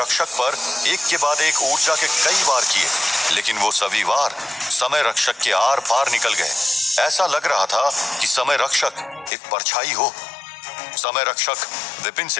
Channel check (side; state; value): right; drops out; at 9.3 s